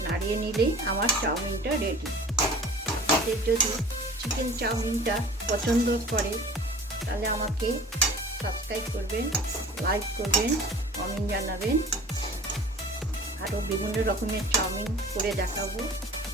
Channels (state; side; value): normal; both; correlation 0.43